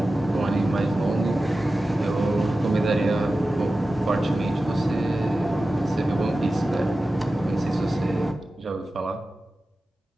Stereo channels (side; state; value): both; normal; correlation 0.94